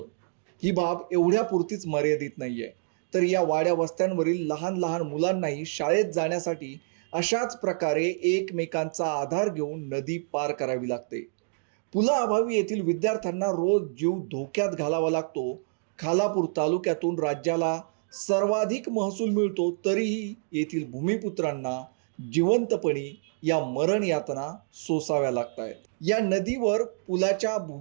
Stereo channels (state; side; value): silent; left; digital silence